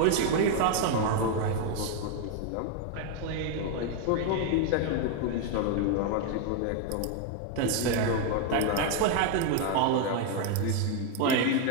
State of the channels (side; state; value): both; different; correlation 0.01